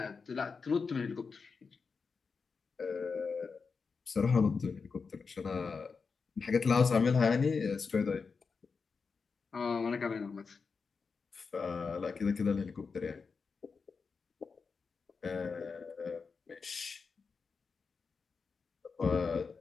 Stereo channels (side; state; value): right; quieter; 5.1 dB